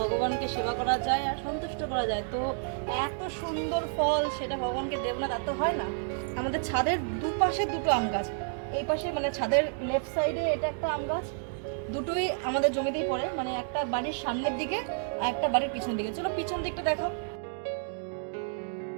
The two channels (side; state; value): left; silent; digital silence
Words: সেবা করা যায় আর সন্তুষ্ট করা যায়। তো এত সুন্দর ফল সেটা ভগবানকে দেব না তা তো হয় না। আমাদের ছাদের দুপাশে দুটো আম গাছ, এই পাশে মানে ছাদের লেফট সাইডে এটা একটা আম গাছ, দুটোই আমাদের জমিতেই পড়ে, মানে একটা বাড়ির সামনের দিকে আর একটা বাড়ির পিছন দিকে। চলো পিছন দিকটা দেখো।